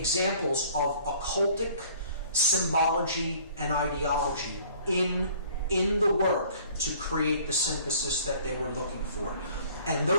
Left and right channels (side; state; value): both; inverted; correlation -0.54